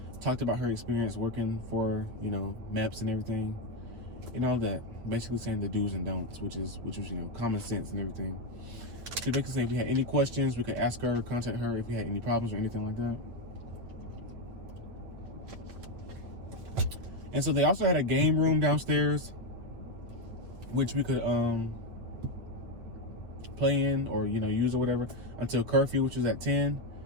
talked about her experience working for, Meps and everything, and all that. Basically saying the do's and don'ts, which was common sense and everything. She basically said if we had any questions, we could ask her, contact her if we had any problems or anything like that. And so they also had a game room downstairs, which we could play in or use or whatever until curfew, which was at 10.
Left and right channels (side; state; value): left; late; 8.9 ms